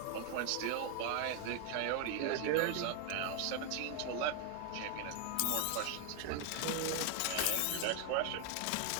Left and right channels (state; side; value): different; both; correlation 0.01